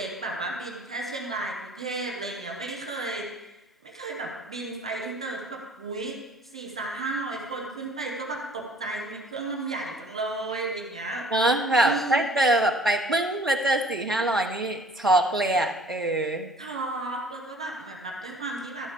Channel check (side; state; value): both; normal; correlation 0.52